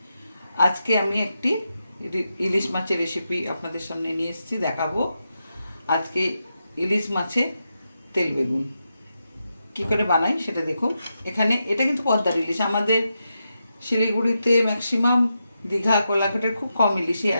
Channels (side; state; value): both; inverted; correlation -0.87